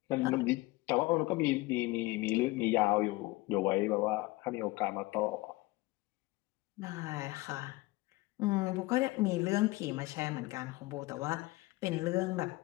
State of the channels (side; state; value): right; quieter; 21.0 dB